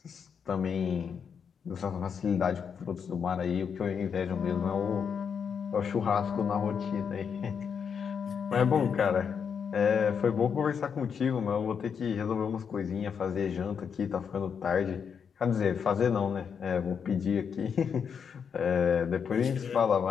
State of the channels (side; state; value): right; quieter; 6.9 dB